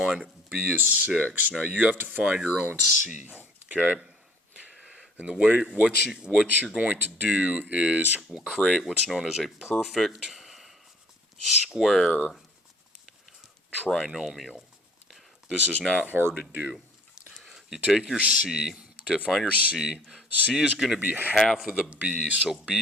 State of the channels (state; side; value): normal; both; correlation 0.55